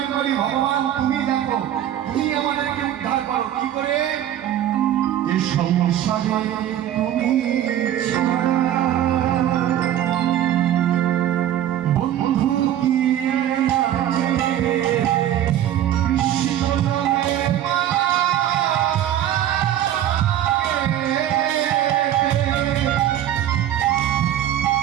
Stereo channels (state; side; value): quieter; left; 11.5 dB